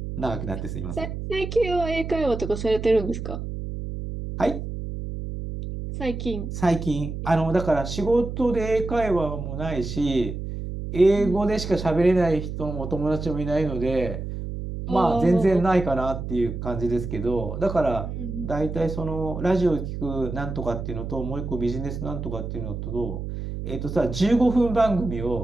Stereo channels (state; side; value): noise; right; hum, 6 dB below the sound